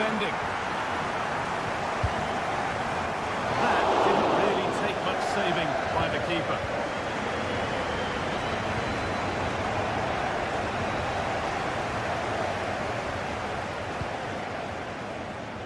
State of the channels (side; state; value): both; identical; correlation 1.00